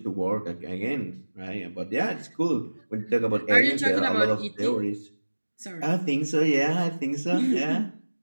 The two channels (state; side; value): inverted; both; correlation -1.00